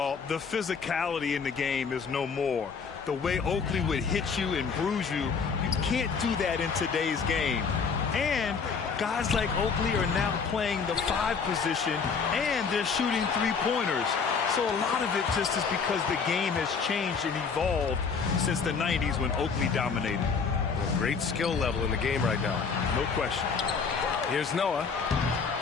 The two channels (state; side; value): quieter; right; 5.6 dB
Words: the physicality in the game is no more. The way Oakley would hit you and bruise you, you can't do that in today's game. And guys like Oakley are now playing the 5 position, and they're shooting 3-pointers. So a lot of it just is because the game has changed and evolved since the 90s when Oakley dominated. A great skill level in the game right now. No question. Here's Noah.